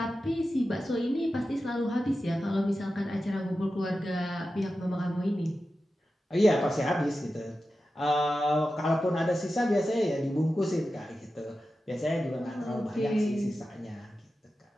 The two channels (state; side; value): normal; both; correlation 0.92